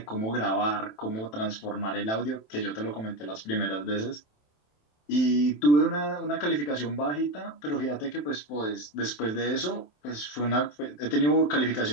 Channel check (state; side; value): late; right; 27 ms